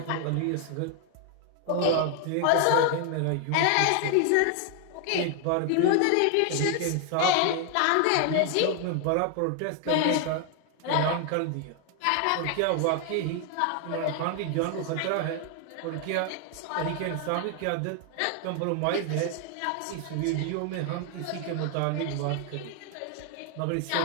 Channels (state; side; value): different; both; correlation 0.00